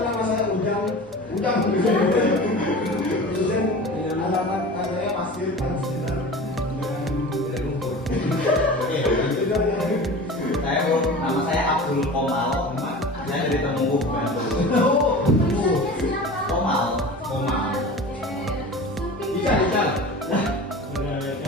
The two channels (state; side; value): normal; both; correlation 0.35